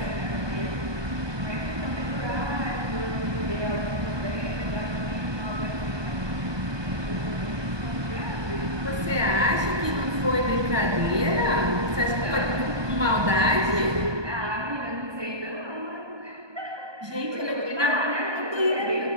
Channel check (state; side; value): late; left; 1.2 ms